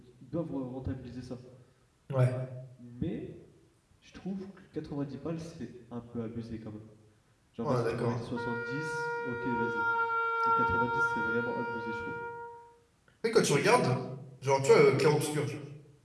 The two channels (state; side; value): identical; both; correlation 1.00